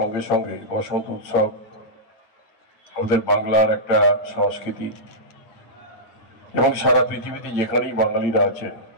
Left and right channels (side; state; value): right; late; 8.8 ms